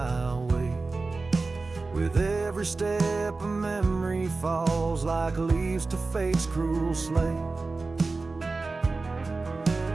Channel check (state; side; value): quieter; left; 3.7 dB